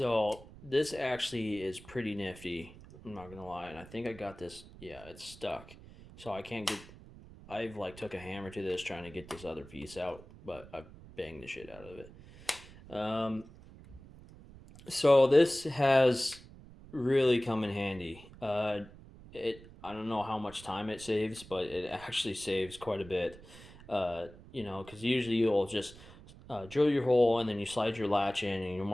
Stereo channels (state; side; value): noise; right; rumble, 19 dB below the sound